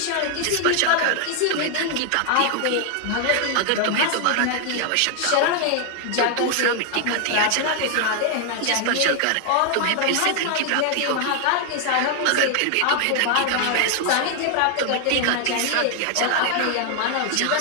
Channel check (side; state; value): both; different; correlation 0.00